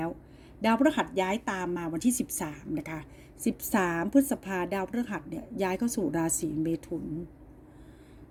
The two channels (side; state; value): both; identical; correlation 1.00